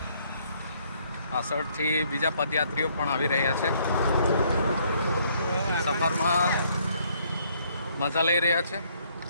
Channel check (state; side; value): inverted; both; correlation -0.67